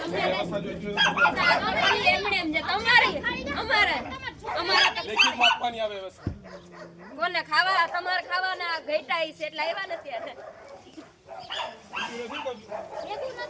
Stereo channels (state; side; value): identical; both; correlation 1.00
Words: એમણે એમ જે તમારી અમારે લેખિત માપવાની આવે વ્યવસ્થા કોને ખાવા તમારે ખાવાના ઘેટાઈ છે એટલે આવ્યા નથી આજે એવું ન